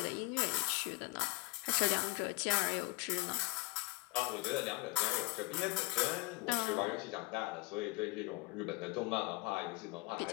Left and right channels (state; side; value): quieter; right; 23.3 dB